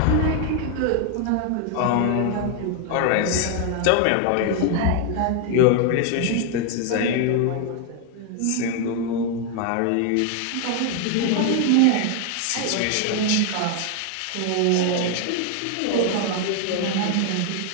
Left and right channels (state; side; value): different; both; correlation 0.01